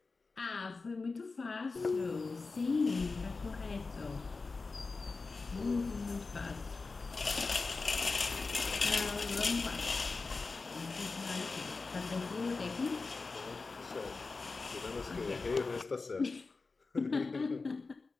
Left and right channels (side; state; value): right; quieter; 4.0 dB